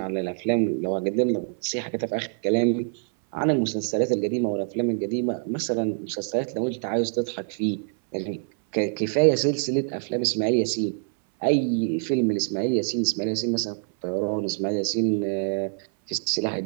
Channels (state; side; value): silent; left; 57 dB below the other